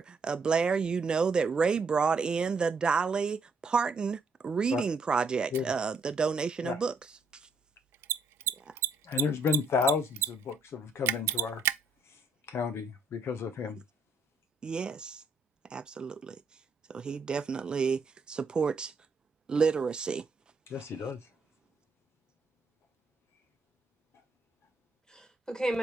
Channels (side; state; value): left; quieter; 3.1 dB